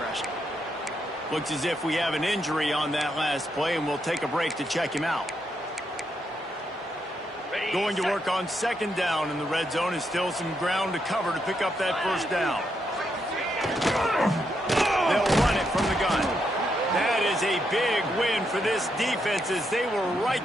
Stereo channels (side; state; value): both; normal; correlation 0.80